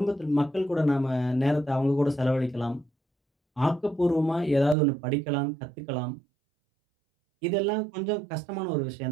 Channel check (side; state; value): left; drops out; at 4.8 s